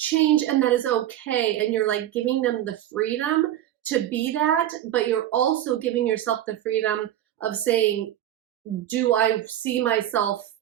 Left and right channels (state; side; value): quieter; left; 12.3 dB